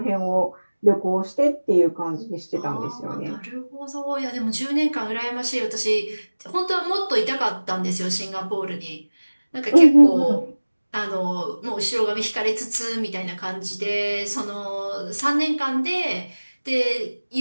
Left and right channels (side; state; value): both; inverted; correlation -1.00